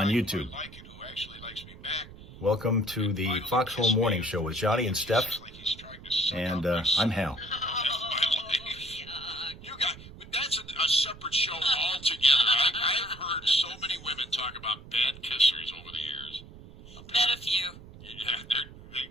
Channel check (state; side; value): noise; right; rumble, 17 dB below the sound